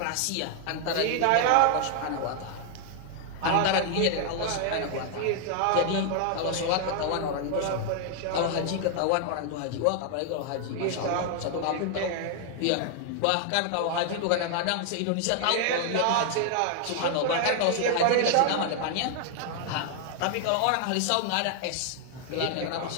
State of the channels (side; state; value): both; different; correlation 0.00